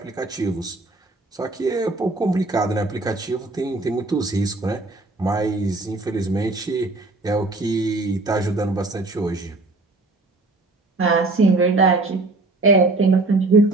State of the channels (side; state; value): left; quieter; 3.1 dB